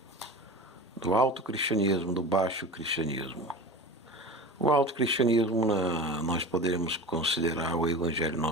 do alto cristianismo, do baixo cristianismo. O alto cristianismo nós poderemos considerar o Evangelho de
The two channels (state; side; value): normal; both; correlation 0.31